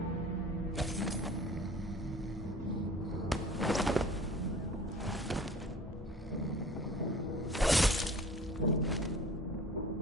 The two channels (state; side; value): normal; both; correlation 0.45